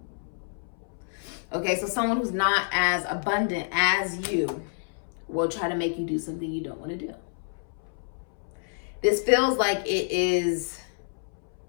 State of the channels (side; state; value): right; silent; 59 dB below the other